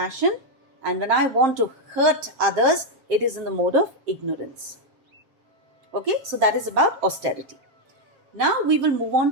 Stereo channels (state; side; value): late; left; 7.4 ms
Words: And when I want to hurt others, it is in the mode of ignorance. Okay, so that is about austerity. Now we will move